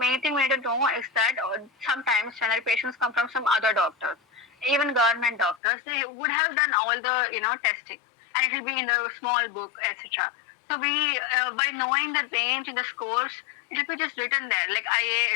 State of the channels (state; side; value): drops out; right; at 5.6 s